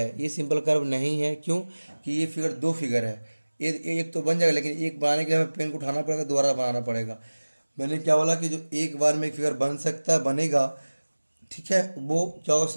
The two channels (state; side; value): inverted; both; correlation -1.00